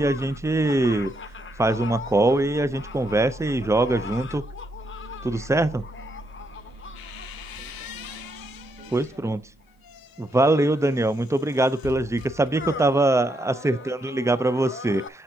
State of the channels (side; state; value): both; normal; correlation 0.78